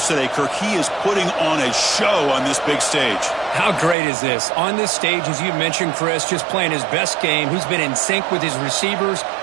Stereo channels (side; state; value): left; drops out; at 4.0 s